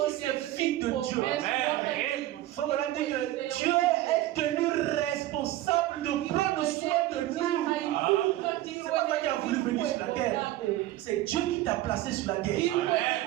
ces fils de Dieu. Donc on a dit que Dieu est tenu responsable de prendre soin de nous. C'est pas toi qui as voulu venir sur la terre. C'est Dieu qui t'a placé sur la terre.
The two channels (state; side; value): quieter; left; 15.2 dB